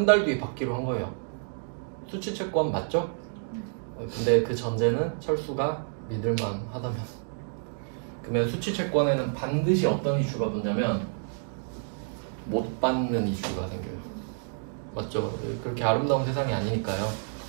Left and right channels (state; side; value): silent; left; digital silence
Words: 달 뒤에 받기로 한 거예요. 수취채권 맞죠? 근데 그 전제는 철수가 믿을만 하다면. 그러면 수취채권에는 반드시 어떤 이슈가 붙냐면 못 받는 이슈가 생겨요. 맞죠? 그렇게 아름다운 세상이 아니니까요.